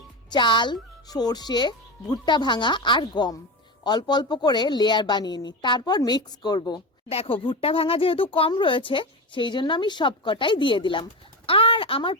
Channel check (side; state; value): both; normal; correlation 0.20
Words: চাল, সর্ষে, ভুট্টা ভাঙা আর গম। অল্প অল্প করে লেয়ার বানিয়ে নি, তারপর মিক্স করব। দেখো ভুট্টা ভাঙা যেহেতু কম রয়েছে সেই জন্য আমি সবকটাই দিয়ে দিলাম। আর আমার